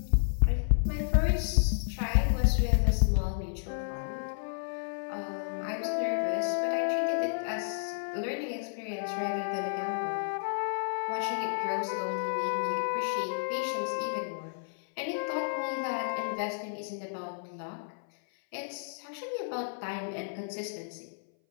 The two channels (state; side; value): silent; right; 57 dB below the other